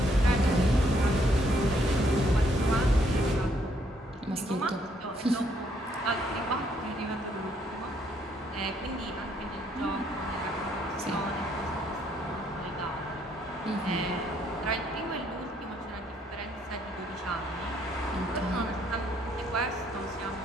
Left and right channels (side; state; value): both; normal; correlation 0.69